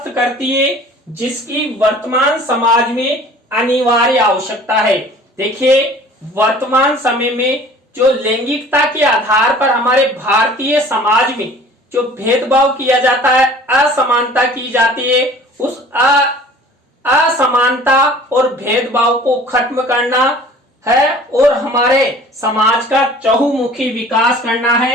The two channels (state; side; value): normal; both; correlation 0.47